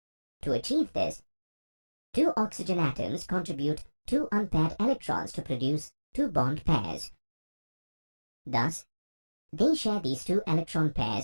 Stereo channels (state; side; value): inverted; both; correlation -1.00